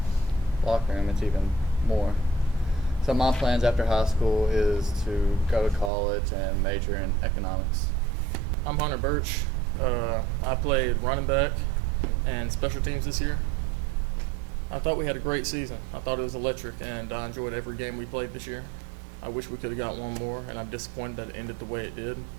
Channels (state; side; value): drops out; left; at 5.9 s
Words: locker room, it's even more. So my plans after high school is to go to college and major in economics. I'm Hunter Birch. I played running back and special teams this year. I thought we had a great season. I thought it was electric, and I enjoyed every game we played this year. I wish we could have got one more, and I'm disappointed that it ended the way it did.